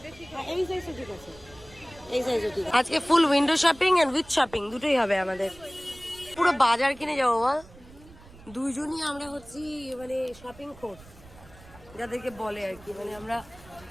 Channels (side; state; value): right; noise; rumble, 22 dB below the sound